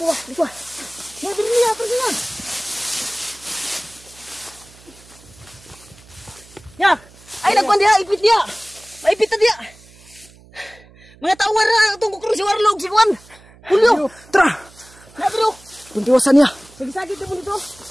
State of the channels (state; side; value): noise; right; hum, 25 dB below the sound